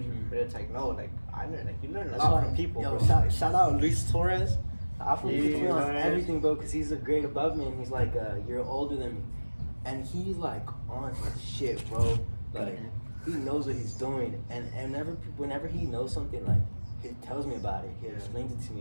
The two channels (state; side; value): inverted; both; correlation -1.00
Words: but it's like no, like I learn, like you learn a lot from people. Yo, bro. shout out Luis Torres. Afro Yeah, puts me on Torres. everything, bro, because he's a grade above me and he's like a year older than me. And he's like on his shit, bro. Like he knows what he's doing, and whenever he knows something, like he tells me about it. He explains it to